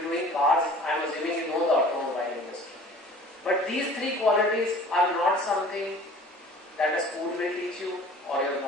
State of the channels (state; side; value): normal; both; correlation 0.47